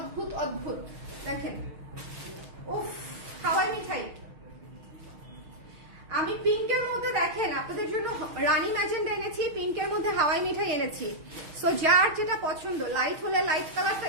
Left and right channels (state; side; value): late; left; 6.3 ms